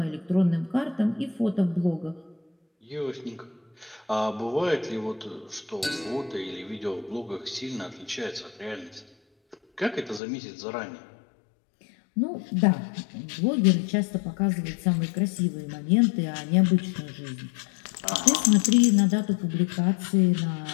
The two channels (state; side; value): drops out; right; at 10.2 s